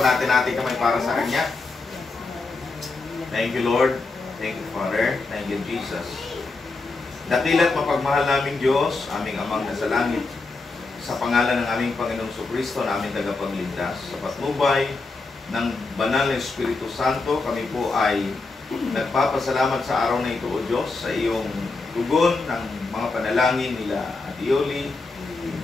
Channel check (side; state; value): right; quieter; 3.7 dB